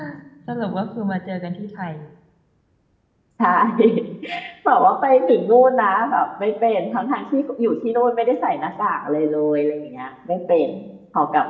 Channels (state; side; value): identical; both; correlation 1.00